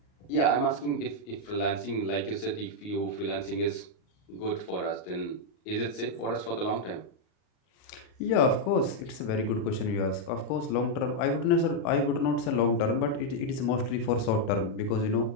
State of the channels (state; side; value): late; right; 38 ms